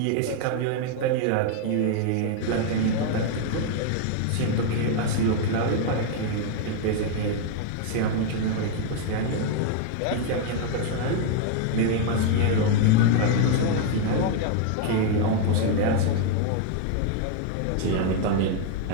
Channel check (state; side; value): different; both; correlation 0.00